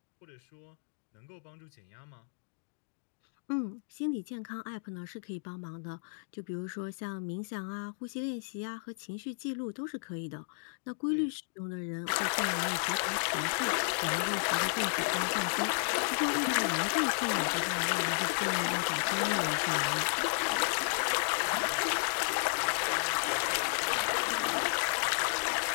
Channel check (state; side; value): silent; right; digital silence